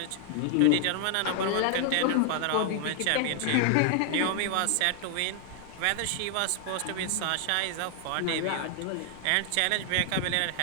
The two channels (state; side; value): different; both; correlation 0.00